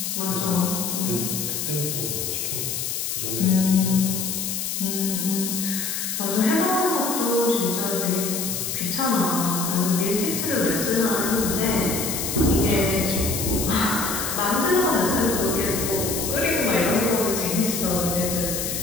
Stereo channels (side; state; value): left; noise; hiss, 3 dB below the sound